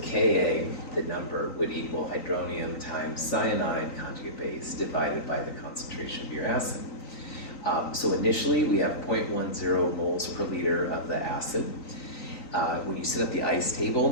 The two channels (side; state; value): right; late; 3.9 ms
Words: the number, would equal hydronium times cyanide conjugate base divided by the concentration of your acid. So initially, we have 0.10 moles per liter of the acid. When you set up the ice